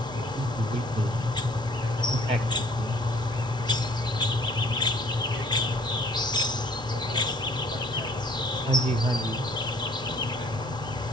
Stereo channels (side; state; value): both; normal; correlation 0.57